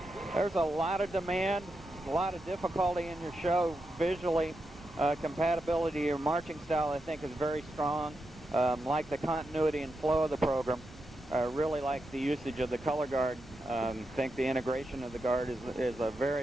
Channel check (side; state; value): both; normal; correlation 0.86